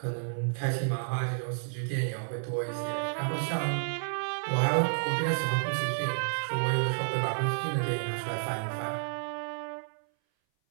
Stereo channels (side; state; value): left; silent; 57 dB below the other